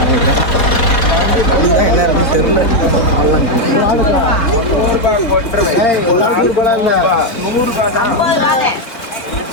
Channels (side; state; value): right; late; 3.8 ms